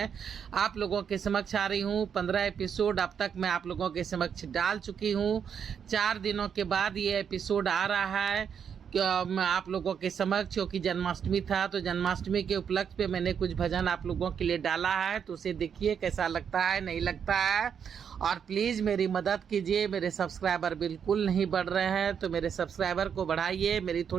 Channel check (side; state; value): left; quieter; 7.5 dB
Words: आप लोगों के समक्ष आ रही हूँ। 15 एपिसोड अब तक मैं आप लोगों के समक्ष डाल चुकी हूँ। 4 दिनों के बाद ये एपिसोड आ रहा है मैं आप लोगों के समक्ष, क्योंकि जन्माष्टमी था तो जन्माष्टमी के उपलक्ष्य पे मैंने कुछ भजन आप लोगों के लिए डाला है। तो उसे देखिए कैसा लगता है, नहीं लगता है। और प्लीज़ मेरी मदद कीजिए। मेरे सब्सक्राइबर बिल्कुल नहीं बढ़ रहे हैं, तो मेरे सब्सक्राइबर को बढ़ाइए, मेरी